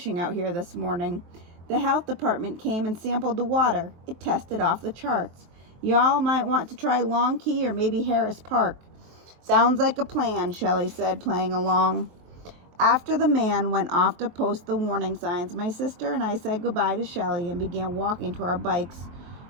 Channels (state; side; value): late; left; 23 ms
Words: out here this morning. The health department came and sampled the water. It tested off the charts. Y'all might want to try Long Key or maybe Harris Park." "Sounds like a plan," Shelly said, playing along. After the man went off to post the warning signs, my sister and I said goodbye to Shelly and began walking to our bikes.